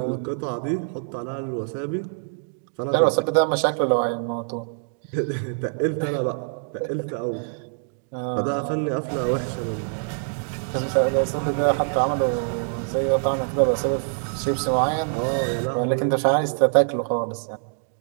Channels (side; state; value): left; silent; digital silence